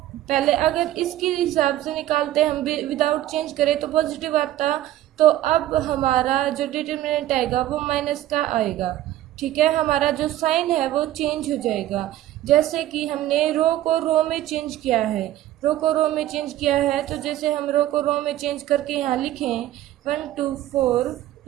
पहले, अगर इसके हिसाब से निकालते हम विदाउट चेंज करें तो पॉजिटिव आता, तो अब हमारा जो डिटर्मिनेंट आएगा वो माइनस का आएगा। ठीक है, हमारा जो साइन है वो चेंज हो जाएगा। जैसे कि हमने रो को रो में चेंज किया है, रो को रो में चेंज किया है, तो जैसे हम रो को रो में चेंज करके यहाँ लिखें 1 2 4,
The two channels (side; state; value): left; quieter; 13.9 dB